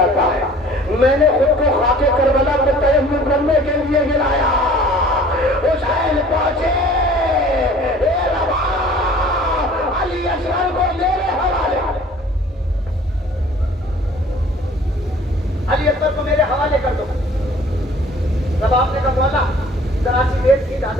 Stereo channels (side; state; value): both; normal; correlation 0.50